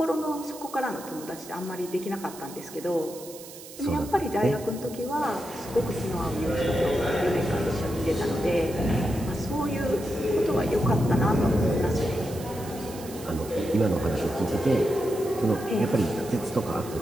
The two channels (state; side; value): noise; right; hiss, 16 dB below the sound